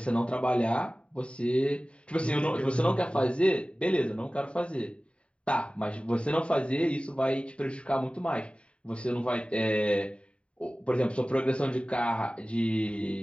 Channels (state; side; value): late; right; 0.059 ms